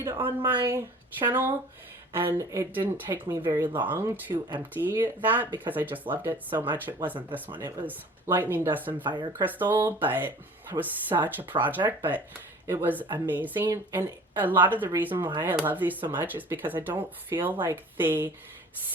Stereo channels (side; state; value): both; normal; correlation 0.46